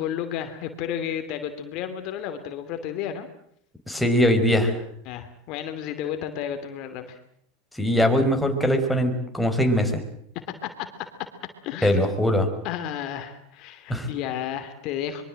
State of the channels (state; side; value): normal; both; correlation 0.48